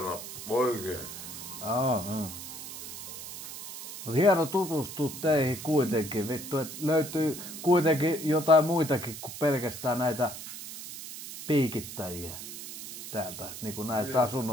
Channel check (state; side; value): noise; right; hiss, 10 dB below the sound